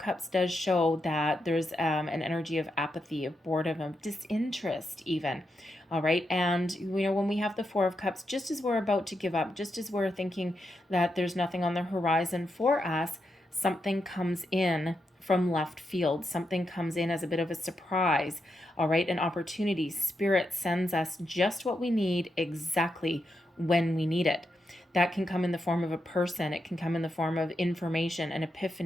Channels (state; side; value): normal; both; correlation 0.85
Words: does show that there's an energy of apathy, of boredom, of disinterest even. All right. And, you know, when we have the Four of Cups, just as we're about to give up, just as we're thinking that there's nothing on the horizon for us, something comes in from left field. Something comes in as a bit of a surprise. All right. An opportunity. Spirit sends us just what we need exactly when we need it. That can come in the form of a person. It can come in the form of information, an